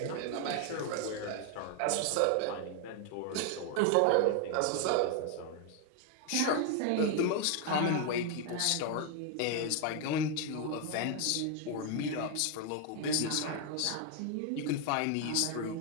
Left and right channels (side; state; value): both; different; correlation 0.01